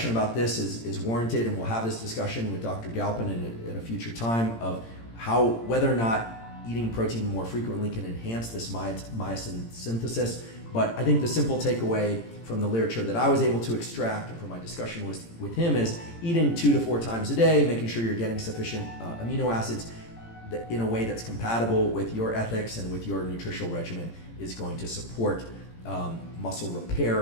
about this is warranted, and we'll have this discussion with Dr. Galpin at a future time of whether or not eating protein more frequently can enhance this myosin synthesis. But I think the simple takeaway from the literature that I was able to extract from my discussion with him is eating 2 to 4 times a day, making sure you're getting sufficient amino acids in a way that's compatible with your ethics and with your nutritional regimen is going to support muscle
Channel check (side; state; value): right; late; 18 ms